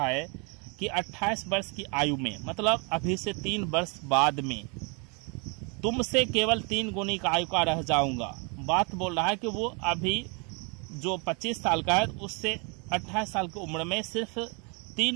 है कि 28 वर्ष की आयु में, मतलब अभी से 3 वर्ष बाद में तुमसे केवल 3 गुनी का आयु का रह जाऊंगा। बात बोल रहा है कि वो अभी जो 25 साल का है उससे 28 साल की उम्र में सिर्फ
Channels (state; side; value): quieter; left; 33.9 dB